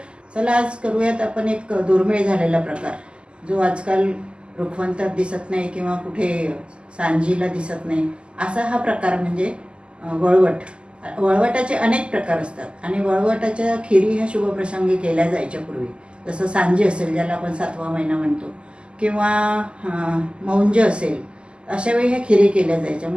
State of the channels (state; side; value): late; left; 0.051 ms